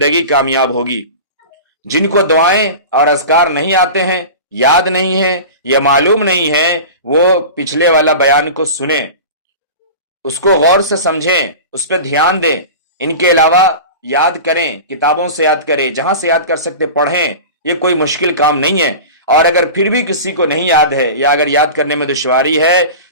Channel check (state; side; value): inverted; both; correlation -0.32